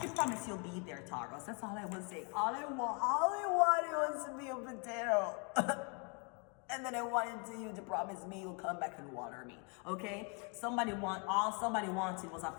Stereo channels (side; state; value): right; quieter; 35.4 dB